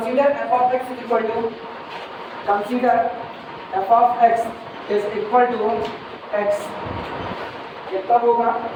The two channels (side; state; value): both; identical; correlation 1.00